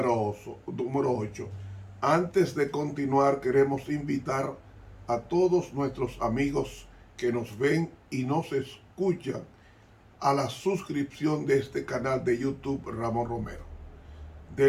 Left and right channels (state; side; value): identical; both; correlation 1.00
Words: 8. Antes de continuar, queremos invitar a todos nuestros amigos que nos ven y nos escuchan a la suscripción de este canal de YouTube Ramón Romero.